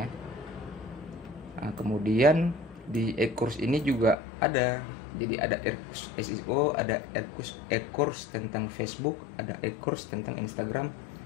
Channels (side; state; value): right; drops out; at 4.2 s